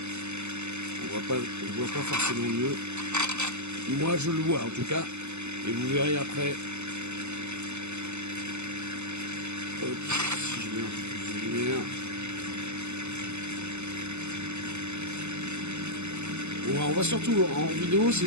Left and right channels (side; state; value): left; late; 0.82 ms